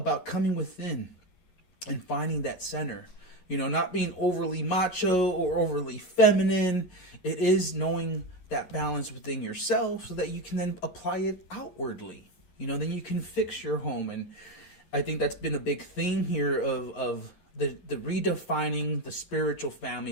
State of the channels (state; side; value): late; right; 11 ms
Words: coming within and finding that center. You know, not being overly macho or overly feminine. It is knowing that balance within yourself so that you can then apply it outwardly. You know, then you can fix your home. And I think that's been a big theme here of the redefining the spiritual family,